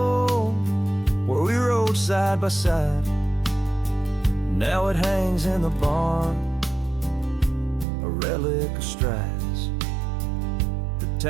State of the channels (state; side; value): drops out; left; at 7.9 s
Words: where we rode side by side. Now it hangs in the barn, a relic of strides. The